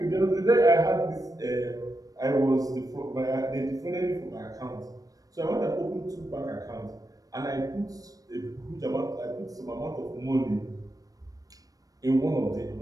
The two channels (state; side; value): late; left; 0.18 ms